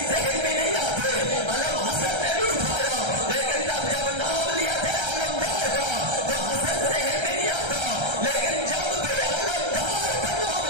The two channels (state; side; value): late; left; 1.3 ms